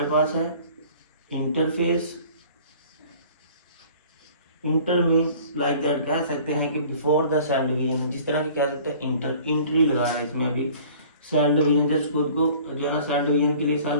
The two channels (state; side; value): inverted; both; correlation -0.49